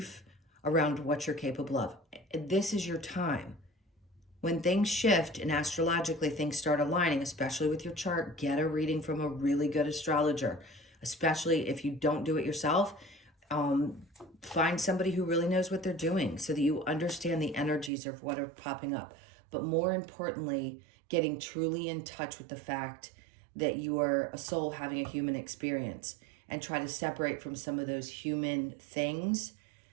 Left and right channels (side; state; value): left; drops out; at 17.9 s